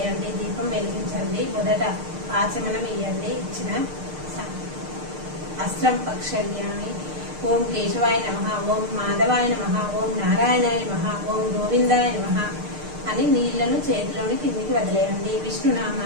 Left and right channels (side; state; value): left; late; 6.6 ms